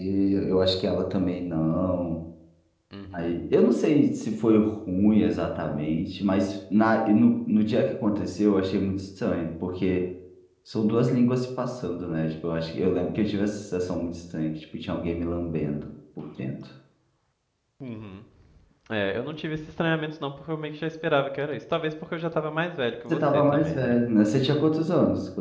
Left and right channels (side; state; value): both; identical; correlation 1.00